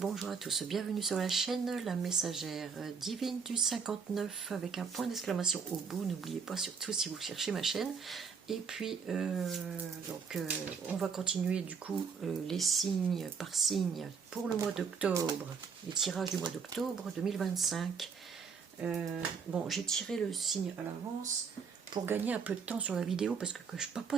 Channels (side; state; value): left; quieter; 5.9 dB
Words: à tous, bienvenue sur la chaîne La Messagère Divine du 59 avec un point d'exclamation au bout, n'oubliez pas surtout si vous cherchez ma chaîne. Et puis, on va continuer du coup les signes par signe pour le mois d'octobre, les tirages du mois d'octobre 2025. Bon, j'ai tiré le signe à l'avance pour gagner un peu de temps sur la vidéo parce que je